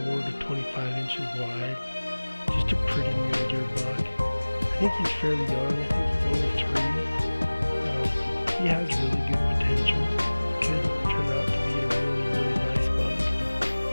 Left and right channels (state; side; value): inverted; both; correlation -1.00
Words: to 25 inches wide. Just a pretty mule deer buck. I think he's fairly young. I think he's only 3. He has really good potential. Could turn out to be a really, really nice buck.